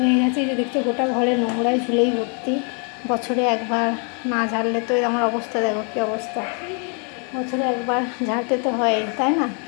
গেছে। এই যে দেখছো গোটা ঘরে নোংরায় ঝুলেই ভর্তি। বছরে একবার না ঝাড়লে তো আমার অবস্থা দেখো কী অবস্থা। বছরে একবার ঝাড়তে তো হয়, তাই না?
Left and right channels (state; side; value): quieter; right; 39.6 dB